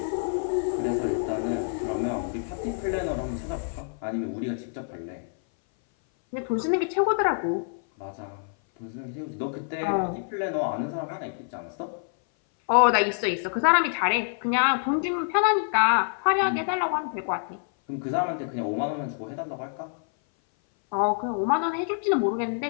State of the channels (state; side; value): silent; right; 57 dB below the other